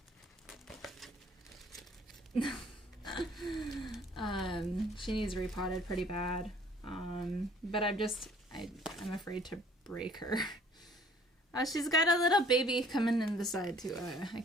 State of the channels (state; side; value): normal; both; correlation 0.56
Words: She needs repotted pretty bad. But I'm afraid to break her. She's got a little baby coming in the side too. I